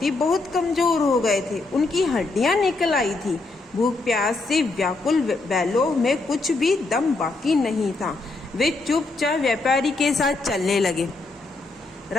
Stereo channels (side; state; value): right; quieter; 3.4 dB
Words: बहुत कमजोर हो गए थे। उनकी हड्डियां निकल आई थी। भूख प्यास से व्याकुल बैलों में कुछ भी दम बाकी नहीं था। वे चुपचाप व्यापारी के साथ चलने लगे।